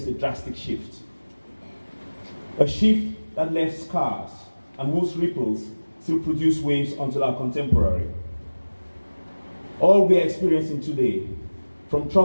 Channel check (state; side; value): inverted; both; correlation -1.00